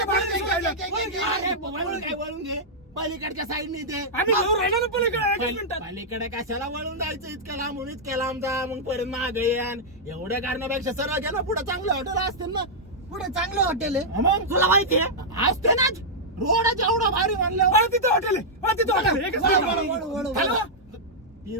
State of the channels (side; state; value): both; normal; correlation -0.08